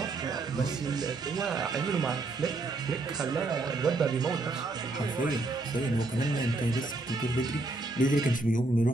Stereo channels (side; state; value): left; quieter; 3.1 dB